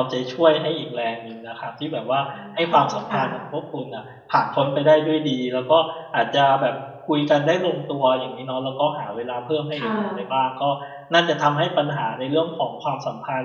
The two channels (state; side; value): identical; both; correlation 1.00